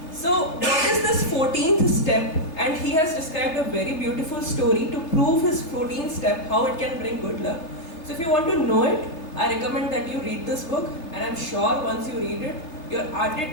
So what is this 14th step? And he has described a very beautiful story to prove his 14th step, how it can bring good luck. So if you want to know it, I recommend that you read this book, and I'm sure once you read it, your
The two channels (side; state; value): right; late; 3.2 ms